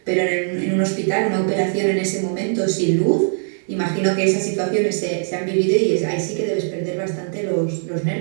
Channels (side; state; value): left; silent; digital silence